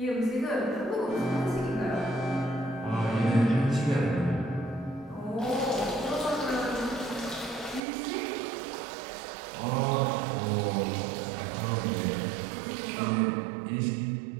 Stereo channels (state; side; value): drops out; left; at 7.8 s